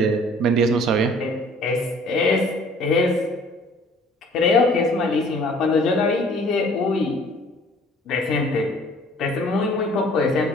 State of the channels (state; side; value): normal; both; correlation 0.54